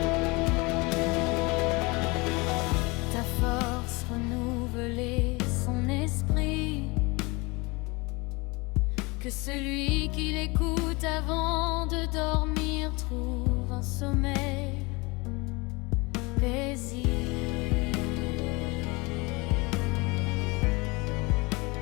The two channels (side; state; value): right; quieter; 26.0 dB